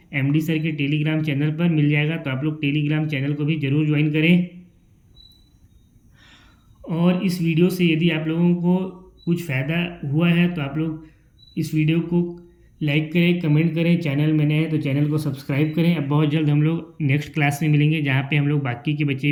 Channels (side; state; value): both; identical; correlation 1.00